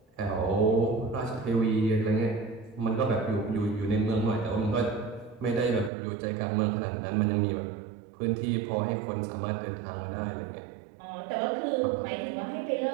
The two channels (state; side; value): drops out; left; at 5.9 s